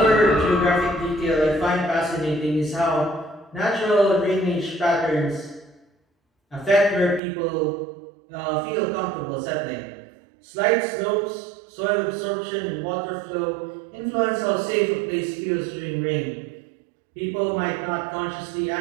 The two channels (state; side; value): drops out; left; at 7.2 s